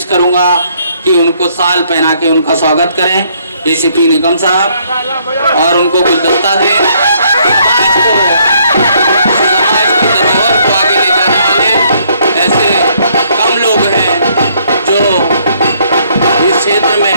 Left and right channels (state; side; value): inverted; both; correlation -0.67